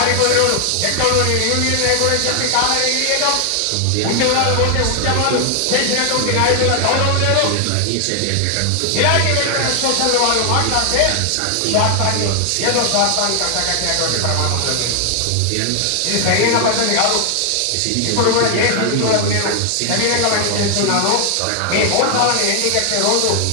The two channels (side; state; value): both; different; correlation 0.00